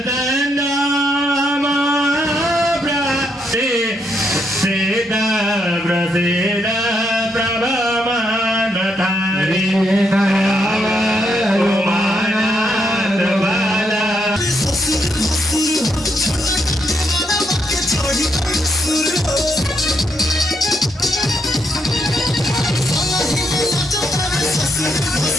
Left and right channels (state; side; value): normal; both; correlation 0.77